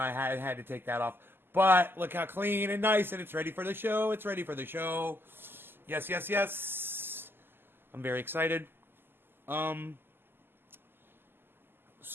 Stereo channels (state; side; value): late; left; 0.10 ms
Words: had to take that off. But look how clean and nice, and it's ready for the show. It's ready for the show. Yes, yes, yes. I'm very excited.